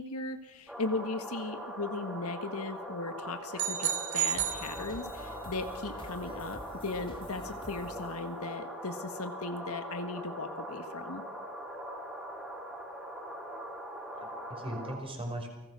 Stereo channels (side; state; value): both; normal; correlation 0.09